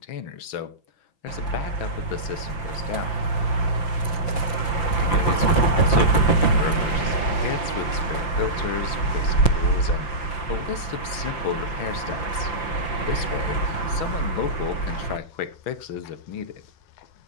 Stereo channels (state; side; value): late; right; 5.9 ms